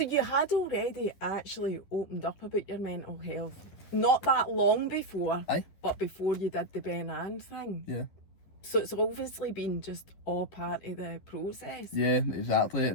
you had already actually opened up about your mental health, not that long before, but before you did the Ben Ann thing. Yeah. So it's obviously been just all part of the process. Yeah, exactly,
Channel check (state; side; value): late; right; 11 ms